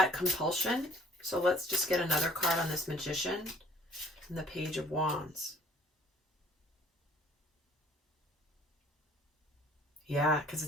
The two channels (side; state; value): both; normal; correlation 0.56